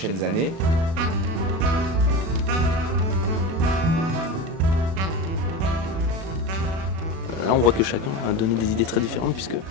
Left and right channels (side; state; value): left; late; 37 ms